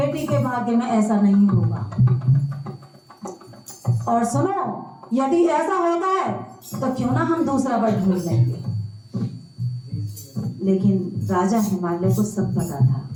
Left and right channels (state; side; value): identical; both; correlation 1.00